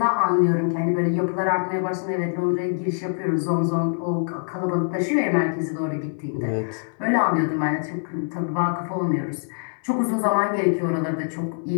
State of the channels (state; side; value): silent; right; digital silence